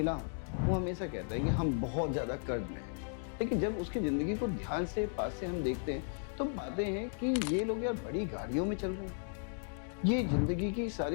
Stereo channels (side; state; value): right; silent; 54 dB below the other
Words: हूँ, वो हमेशा कहते हैं कि हम बहुत ज़्यादा कर्ज में हैं। लेकिन जब उसकी ज़िंदगी को ध्यान से पास से हम देखते हैं तो पाते हैं कि ये लोग यार बड़ी गाड़ियों में चल रहे हैं, ये जिंदगी की